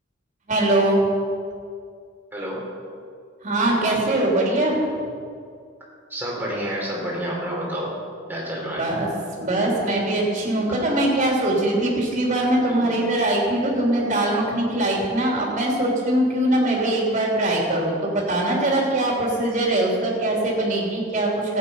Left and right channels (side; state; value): both; normal; correlation 0.32